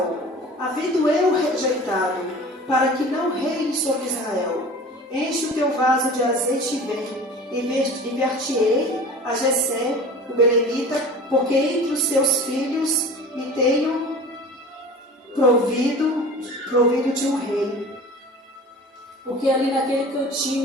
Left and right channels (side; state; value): both; normal; correlation 0.39